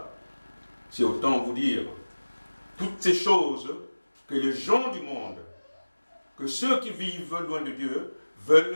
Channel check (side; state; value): both; inverted; correlation -1.00